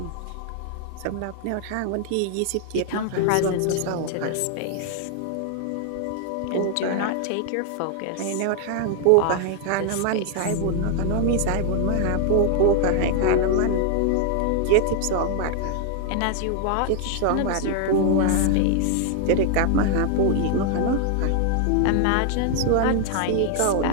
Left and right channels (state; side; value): different; both; correlation 0.00